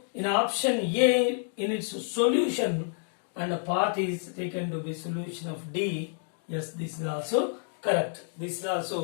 in option A, in its solution, and a part is taken to be solution of D. Yes, this is also correct. This is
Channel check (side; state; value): right; silent; digital silence